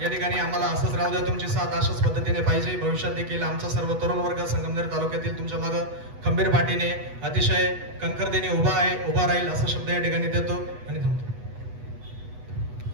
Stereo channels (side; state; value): left; late; 8.1 ms